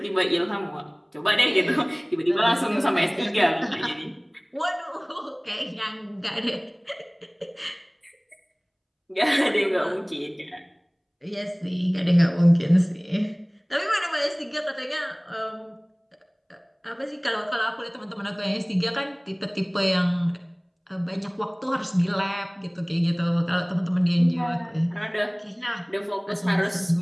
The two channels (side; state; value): both; identical; correlation 1.00